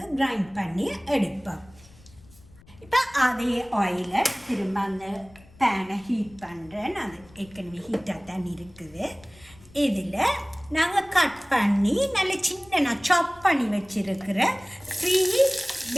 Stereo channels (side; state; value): left; noise; rumble, 25 dB below the sound